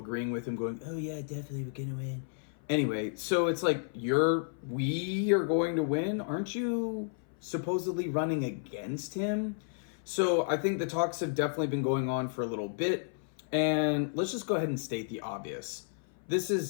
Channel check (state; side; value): silent; right; 55 dB below the other